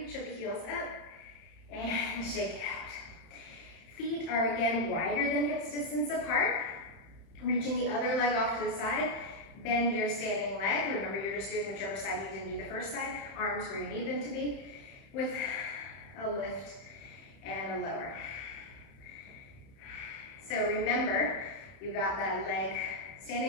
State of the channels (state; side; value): late; right; 31 ms